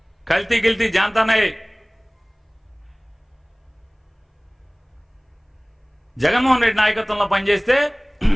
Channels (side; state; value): both; identical; correlation 1.00